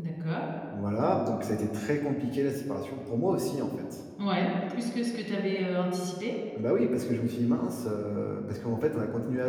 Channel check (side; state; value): both; identical; correlation 1.00